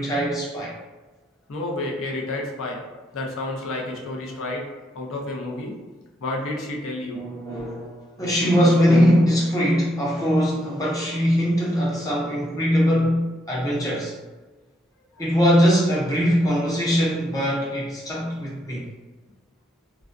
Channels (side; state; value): both; normal; correlation 0.77